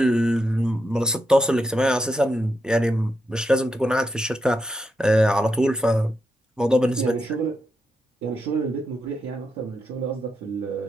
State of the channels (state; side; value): normal; both; correlation 0.84